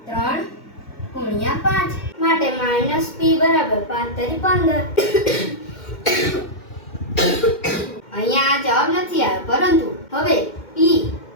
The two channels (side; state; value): right; late; 2.1 ms